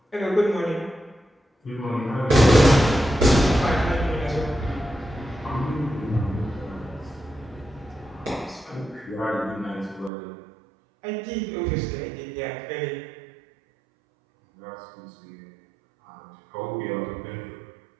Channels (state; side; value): drops out; left; at 10.1 s